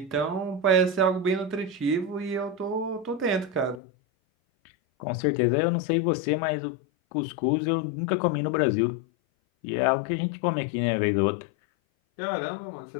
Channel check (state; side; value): drops out; right; at 3.8 s